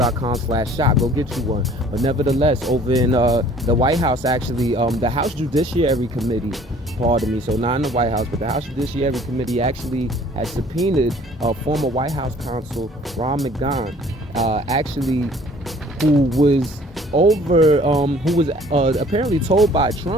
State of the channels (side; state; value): both; normal; correlation 0.54